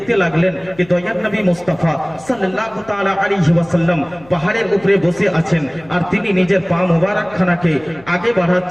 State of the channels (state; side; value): noise; left; hum, 25 dB below the sound